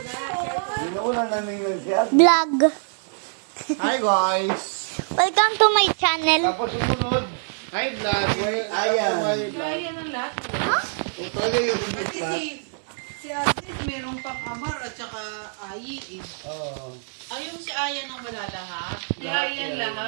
Wala na ninang si Agnes. Vlog. Hi guys! Welcome to my channel. Tapos sumunod. Hi vlog! Ayan. Ayan ang lahat. Ha? Tuloy yung ibig Kasi na. si Agnes merong pang-amar at saka Ayi eh. Oo. Ayun si Ayan ang malalahat. Si Ayan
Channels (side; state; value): left; silent; digital silence